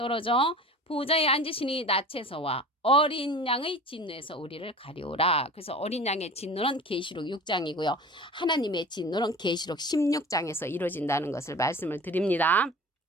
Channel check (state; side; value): normal; both; correlation 0.38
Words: 보좌에 앉으시니 낯에서와 어린 양의 진노에서 우리를 가리오라. 그래서 어린 양의 진노는 계시록 6장이고요. 하나님의 진노는 계시록 16장에서 이루어진다는 것을 말씀을 드립니다.